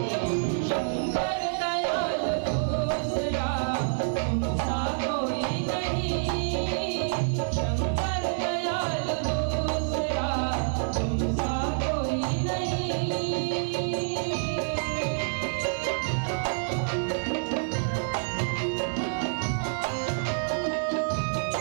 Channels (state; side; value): silent; left; digital silence